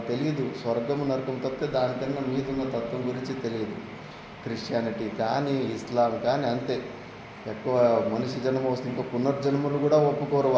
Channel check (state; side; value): identical; both; correlation 1.00